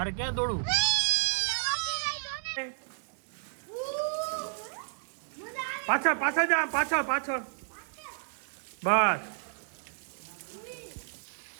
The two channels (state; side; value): silent; left; digital silence